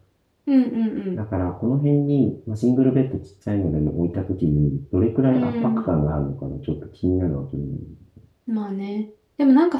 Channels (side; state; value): both; identical; correlation 1.00